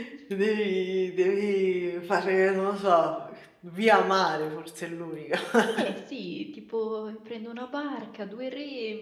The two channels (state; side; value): identical; both; correlation 1.00